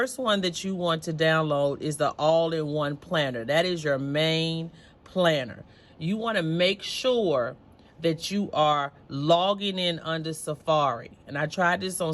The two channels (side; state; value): both; identical; correlation 1.00